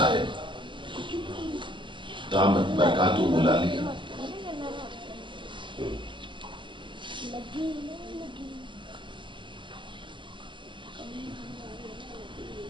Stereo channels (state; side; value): late; left; 0.23 ms